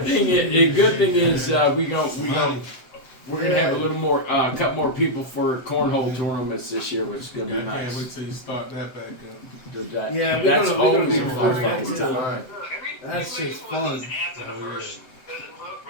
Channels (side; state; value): right; late; 7.8 ms